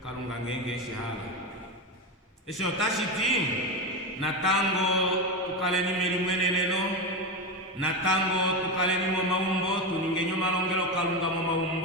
kalunga ngenge shihala esho tashiti natango tukaleni melimweneneno natango tukaleni mo maumbo tuningenyo malongelo kalunga mo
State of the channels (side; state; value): both; normal; correlation 0.16